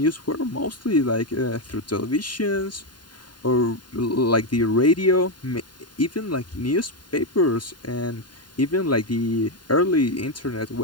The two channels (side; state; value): right; late; 0.71 ms